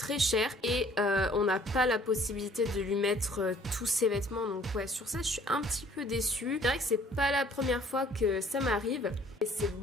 chère et on n'a pas la possibilité de lui mettre tous ses vêtements. Donc ouais, sur ça je suis un petit peu déçue. C'est vrai que c'est pas la première fois que ça m'arrive et c'est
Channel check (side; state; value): both; normal; correlation 0.56